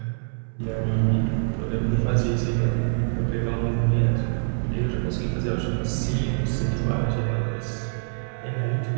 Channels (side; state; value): left; silent; 62 dB below the other